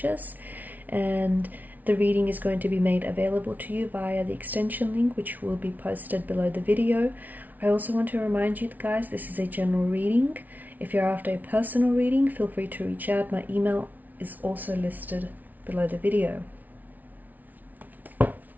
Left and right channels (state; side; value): late; left; 0.078 ms